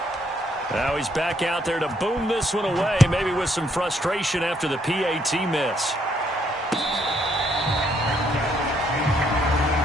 Now he's back out there to boom this one away, maybe with some frustration after the PAT miss.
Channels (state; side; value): normal; both; correlation 0.70